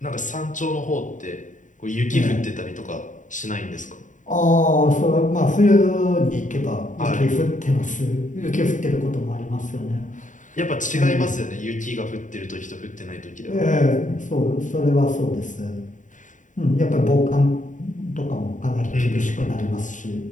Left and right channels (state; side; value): late; right; 0.37 ms